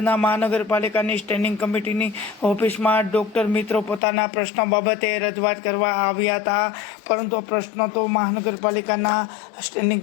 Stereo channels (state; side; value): drops out; right; at 4.0 s